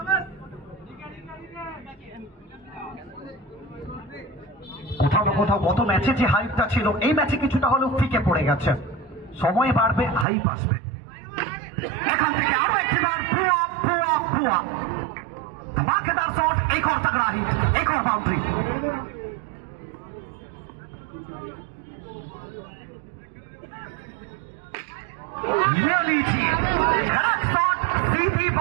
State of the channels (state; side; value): drops out; left; at 10.2 s